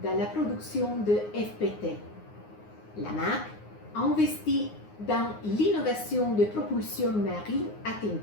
dans la production de FPT. La marque a investi dans l'innovation de propulsion marine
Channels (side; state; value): right; late; 9.6 ms